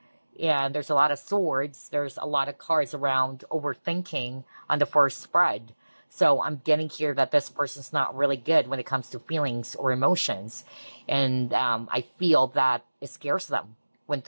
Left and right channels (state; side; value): inverted; both; correlation -1.00